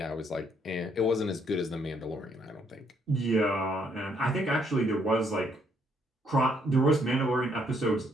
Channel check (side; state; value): both; normal; correlation 0.69